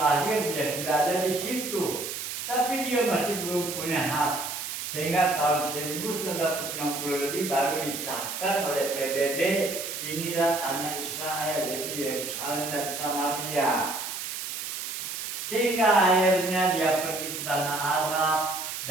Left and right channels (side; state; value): right; noise; hiss, 5 dB below the sound